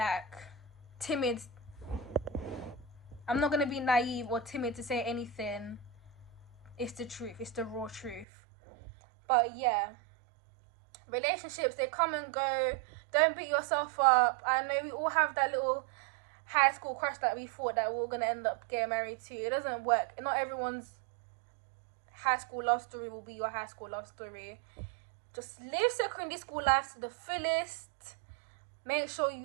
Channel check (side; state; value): left; drops out; at 8.2 s